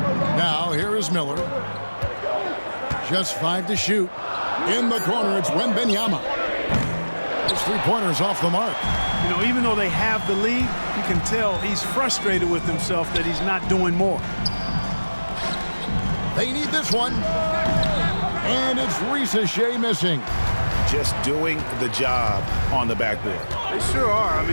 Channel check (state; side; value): inverted; both; correlation -1.00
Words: Now, here is Miller. Just 5 to shoot. In the corner, it's Wembanyama. His three-pointer's off the mark. You know, even though they have the lead, you can tell he's frustrated with himself that he's not doing more. They need this one. And it's Rizachet missing. Just doing the job on the backboard. They sure are. I